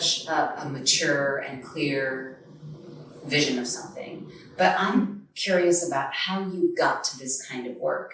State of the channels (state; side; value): identical; both; correlation 1.00